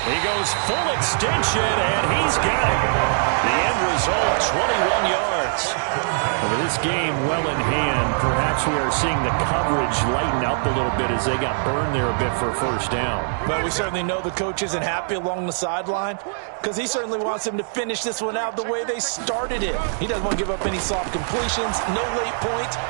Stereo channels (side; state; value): left; silent; digital silence